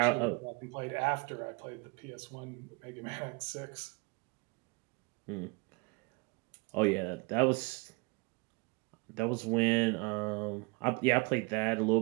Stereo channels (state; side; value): quieter; left; 29.7 dB